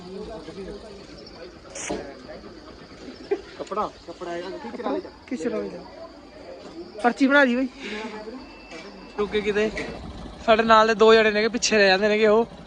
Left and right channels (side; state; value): both; identical; correlation 1.00